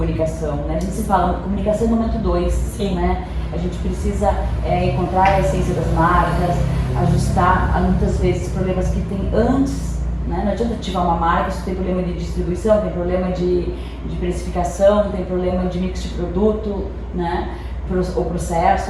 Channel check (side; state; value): both; identical; correlation 1.00